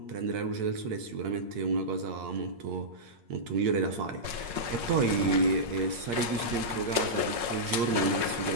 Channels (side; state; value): left; late; 8.6 ms